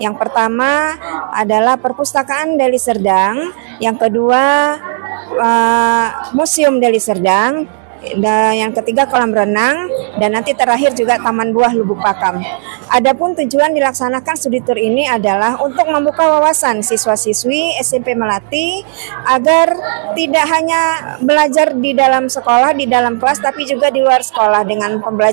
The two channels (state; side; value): silent; left; digital silence